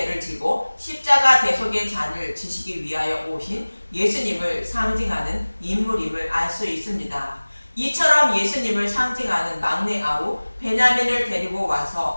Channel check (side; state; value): both; inverted; correlation -1.00